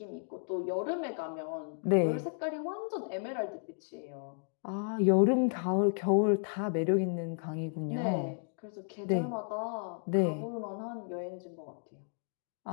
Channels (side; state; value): right; silent; 55 dB below the other